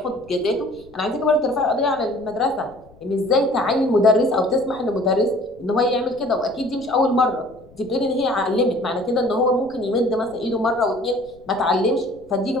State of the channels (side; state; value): left; noise; rumble, 26 dB below the sound